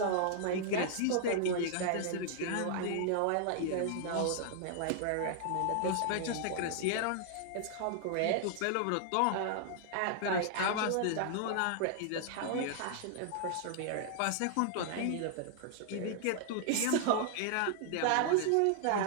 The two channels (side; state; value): both; different; correlation -0.01